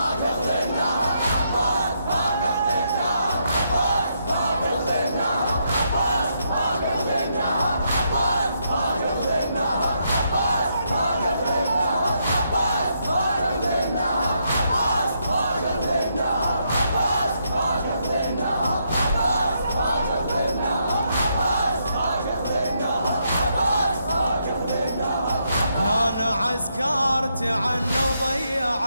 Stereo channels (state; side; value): inverted; both; correlation -0.78